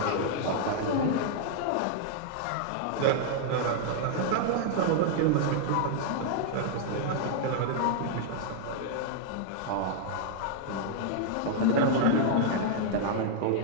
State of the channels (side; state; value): both; different; correlation -0.01